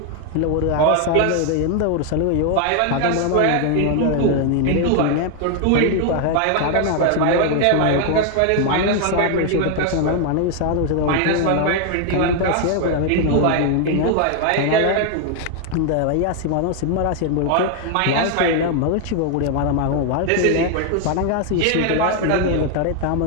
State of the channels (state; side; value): different; both; correlation 0.00